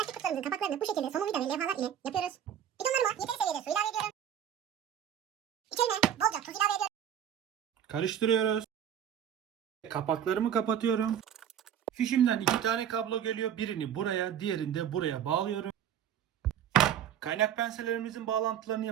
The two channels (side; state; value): left; quieter; 9.4 dB